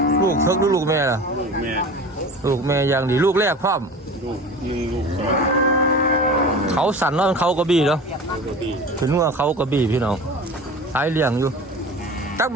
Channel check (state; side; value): normal; both; correlation 0.36